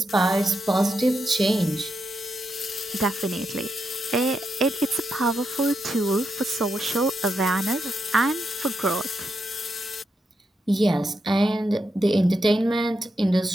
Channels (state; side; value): normal; both; correlation 0.83